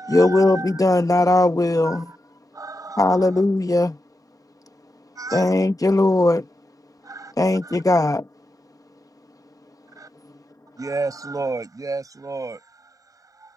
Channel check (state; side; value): normal; both; correlation 0.88